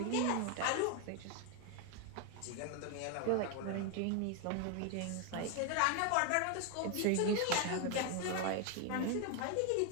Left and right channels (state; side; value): different; both; correlation 0.01